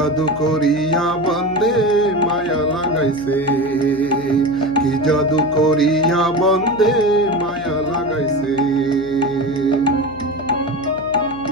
করিয়া বন্দে মায়া লাগাইছে, কি জাদু করিয়া বন্দে মায়া লাগাইছে।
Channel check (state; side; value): noise; left; hum, 16 dB below the sound